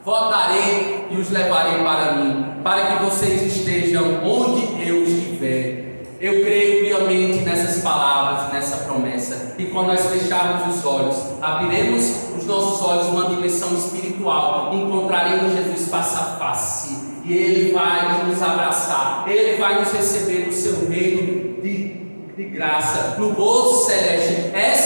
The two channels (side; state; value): both; inverted; correlation -1.00